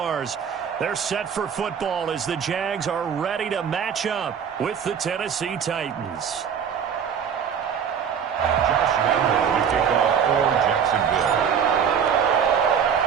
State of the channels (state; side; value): quieter; left; 7.6 dB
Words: They're set for football as the Jags are ready to match up with the Tennessee Titans. Josh Allen, the kickoff for Jacksonville.